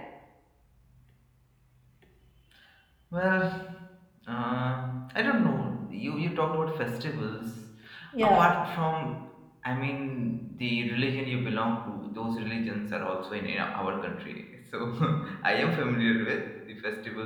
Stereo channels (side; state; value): both; identical; correlation 1.00